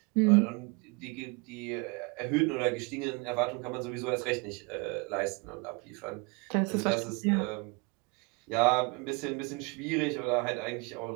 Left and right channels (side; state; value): left; quieter; 30.1 dB